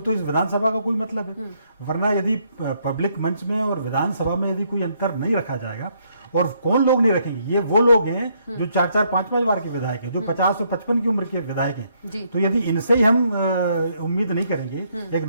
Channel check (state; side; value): inverted; both; correlation -0.72